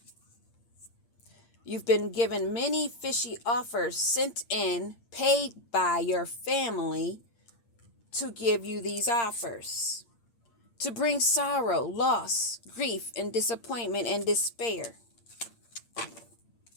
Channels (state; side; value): late; right; 8.7 ms